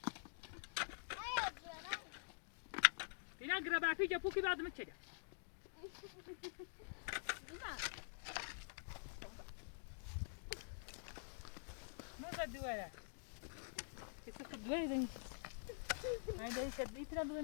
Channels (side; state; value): right; silent; digital silence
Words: اینا گربه پیچ پوکی بعد میچگه. نه دوره. کسی دوره زنی. این داری شد نیتر